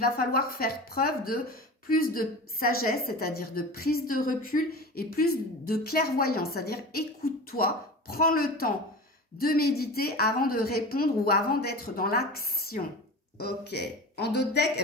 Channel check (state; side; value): normal; both; correlation 0.32